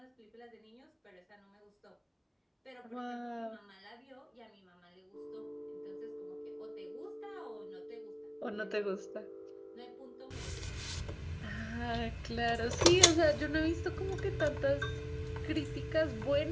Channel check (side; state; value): both; identical; correlation 1.00